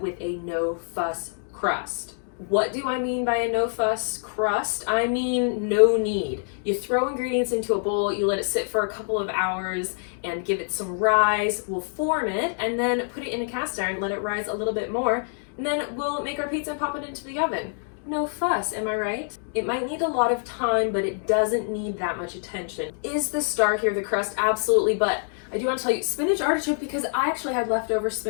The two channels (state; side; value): silent; right; 60 dB below the other